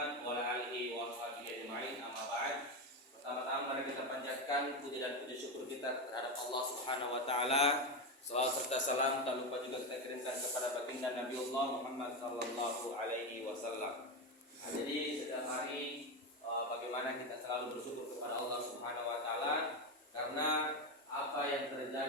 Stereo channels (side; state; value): both; normal; correlation 0.13